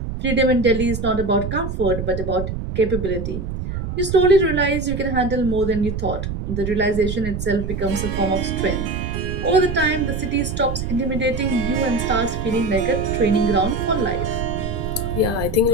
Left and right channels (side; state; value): right; noise; rumble, 5 dB below the sound